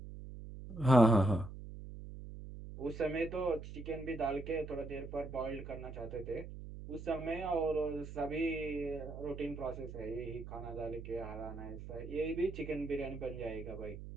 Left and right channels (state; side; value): noise; right; hum, 11 dB below the sound